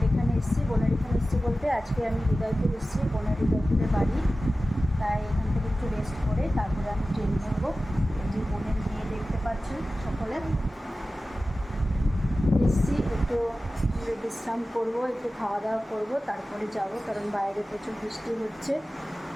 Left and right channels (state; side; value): normal; both; correlation 0.95